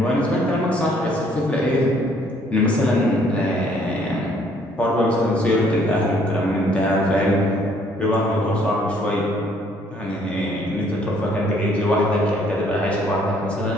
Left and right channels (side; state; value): both; normal; correlation 0.63